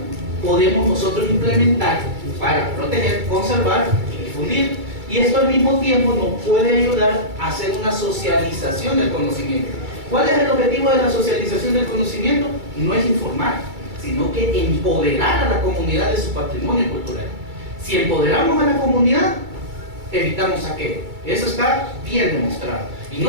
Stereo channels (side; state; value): left; late; 2.3 ms